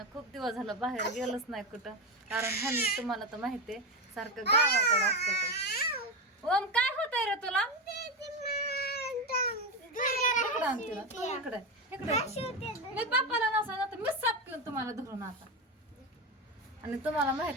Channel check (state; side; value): normal; both; correlation 0.14